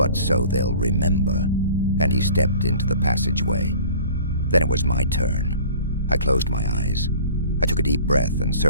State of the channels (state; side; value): inverted; both; correlation -0.46